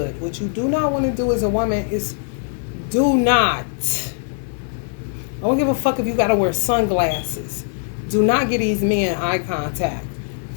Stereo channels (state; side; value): silent; right; 65 dB below the other